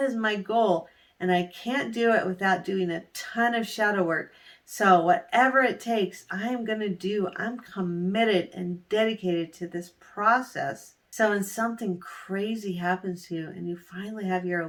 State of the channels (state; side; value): identical; both; correlation 1.00